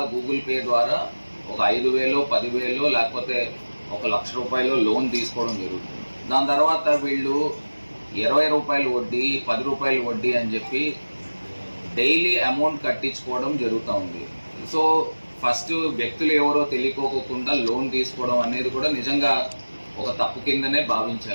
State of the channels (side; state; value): both; inverted; correlation -1.00